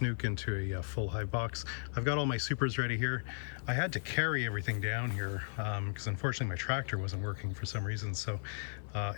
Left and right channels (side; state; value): right; silent; 54 dB below the other